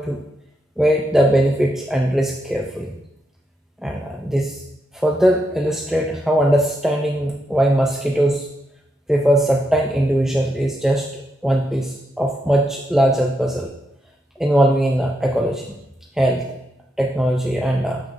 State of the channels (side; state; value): both; normal; correlation 0.82